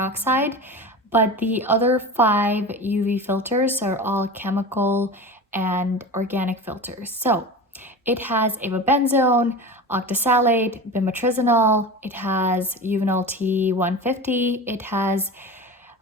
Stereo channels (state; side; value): normal; both; correlation 0.30